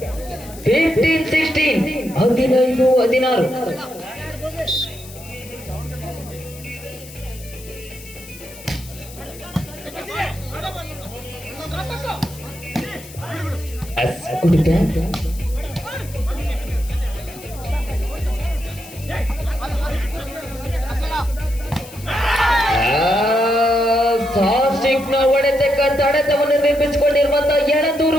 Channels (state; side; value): noise; left; hiss, 17 dB below the sound